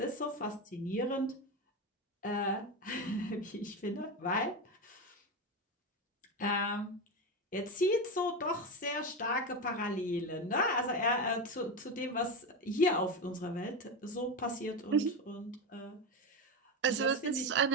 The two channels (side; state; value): both; normal; correlation 0.17